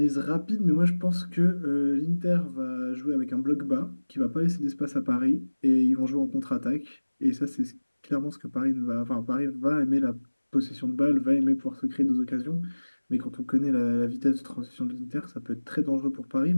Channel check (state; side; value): inverted; both; correlation -1.00